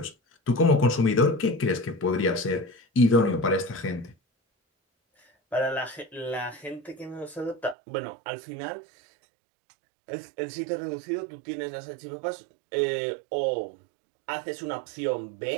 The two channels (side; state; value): left; drops out; at 7.8 s